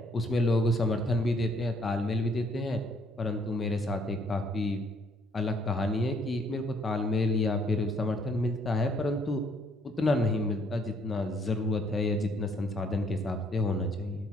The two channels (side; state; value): both; normal; correlation 0.65